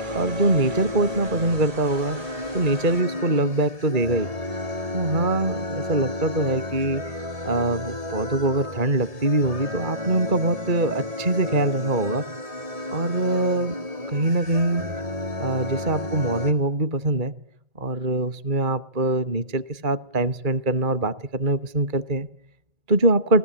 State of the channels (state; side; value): late; left; 1.7 ms